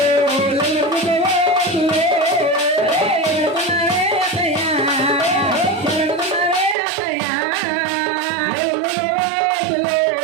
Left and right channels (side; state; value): left; drops out; at 6.8 s